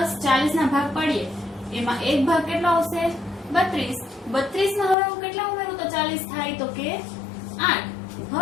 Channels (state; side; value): drops out; right; at 5.0 s